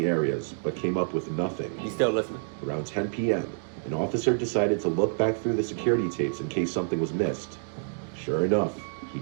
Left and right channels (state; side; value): silent; left; digital silence